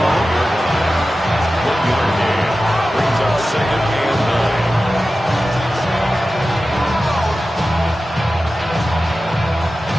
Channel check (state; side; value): normal; both; correlation 0.94